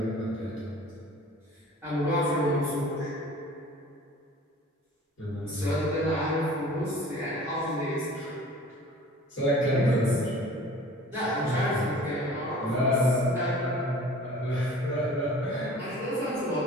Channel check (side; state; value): both; normal; correlation 0.45